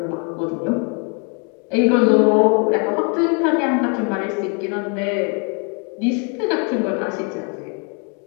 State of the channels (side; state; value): right; quieter; 35.2 dB